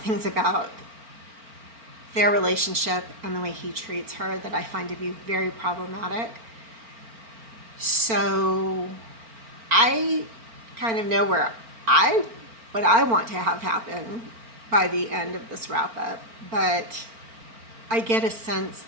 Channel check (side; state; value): left; late; 4.4 ms